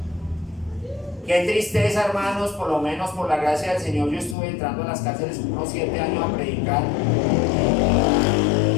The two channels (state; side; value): drops out; right; at 4.4 s